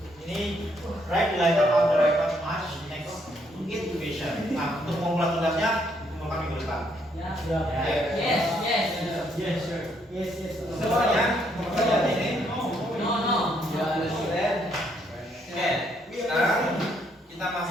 Ini write the letter of the record match next intuition. Nah, untuk membuat tugasnya kumpulkan minggu depan. Oke. Yes. Yes. Semuanya pekerjaan ini. No. Oke, sekarang kita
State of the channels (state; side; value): normal; both; correlation 0.72